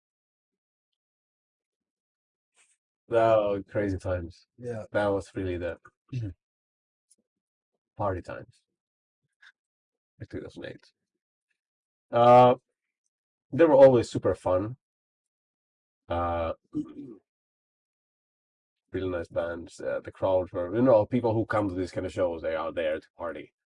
Oh, crazy times. Yeah. That was really the party times. Like 2008. They were always super fun. Really nice bands. The crowds were, people who come to these kind of shows, they are there to party.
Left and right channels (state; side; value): identical; both; correlation 1.00